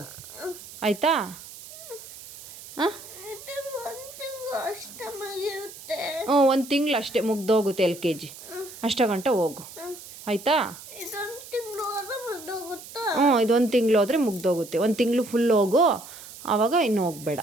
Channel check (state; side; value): noise; right; hiss, 16 dB below the sound